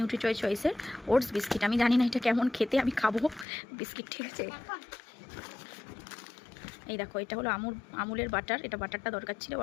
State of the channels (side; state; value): right; drops out; at 3.5 s